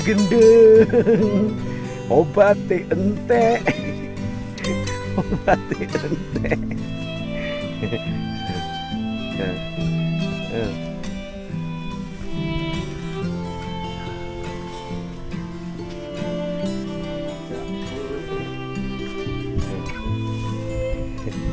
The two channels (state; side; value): identical; both; correlation 1.00